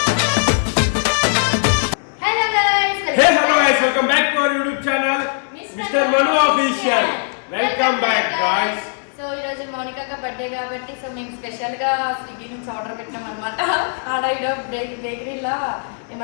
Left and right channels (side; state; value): right; silent; digital silence